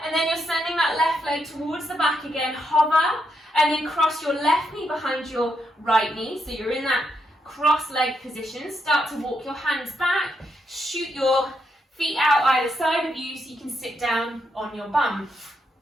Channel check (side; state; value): both; normal; correlation 0.80